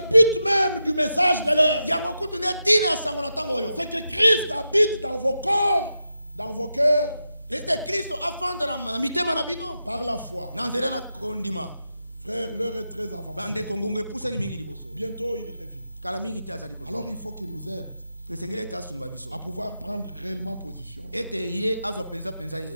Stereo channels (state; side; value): inverted; both; correlation -0.87